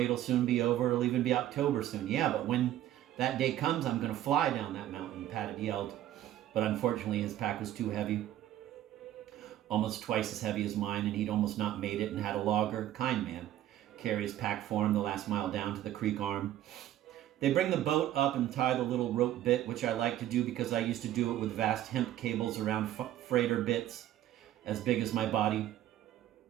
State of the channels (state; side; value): quieter; left; 12.8 dB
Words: it'll soon be over. It'll even be October soon. Yeah, but when that day comes, I'm going to fly down that mountain, Pat had yelled. But unfortunately, his pack was too heavy. Almost twice as heavy as mine, and he'd almost not made it and had a logger, kind man, carry his pack for him the last mile down to the creek arm. They bring the boat up and tie the little rope bit, which I like to do because I used to do it with vast hemp cables around freighter bits as big as my body.